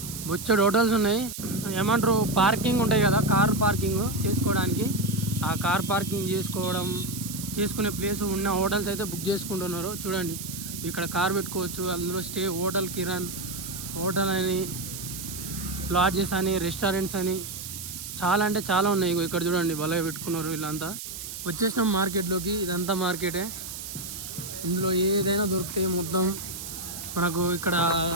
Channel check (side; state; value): right; noise; hiss, 9 dB below the sound